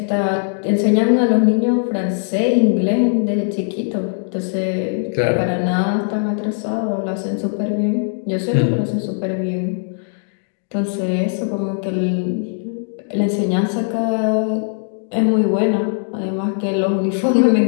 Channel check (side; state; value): right; silent; digital silence